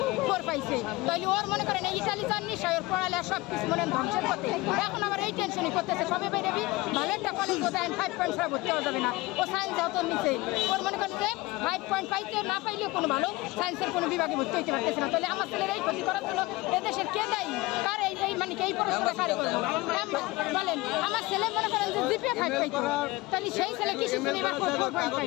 পাইছে। তাইলে ওর মনে করেন ইটালি যান নিশ্চয়, ওর পড়ালে সব কিছু মনে ধ্বংসের পথে। এখন আবার এই টেনশনই করতেছে কবে বেরোবি, ভালো একটা কলেজ বোধহয় 5.5 ভর্তি হওয়া যাবে না। ও সায়েন্স যত নিচে, ওর মনে করেন যে 5 পয়েন্ট পাইতে না পাইলেও কোনো ভালো সায়েন্সের কোনো বিভাগে ভর্তি হইতে পারতেছে না। তাহলে আমার ছেলের এই ক্ষতি করার জন্য এদেশের কে দায়ী? কার এই মানে এই পড়াশোনা কারে করবো বলেন? আমার ছেলে মনে করেন যে GPA 5 পাইতো, তাহলে সেই ছেলে কি শিখবে? এবার 4 পয়েন্ট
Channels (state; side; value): quieter; right; 20.9 dB